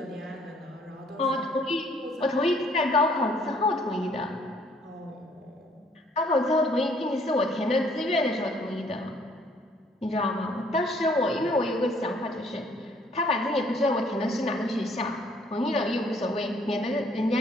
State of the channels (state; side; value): normal; both; correlation 0.62